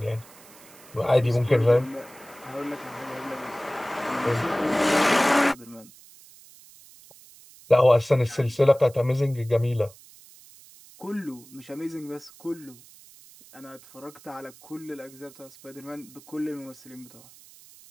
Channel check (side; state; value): right; noise; hiss, 23 dB below the sound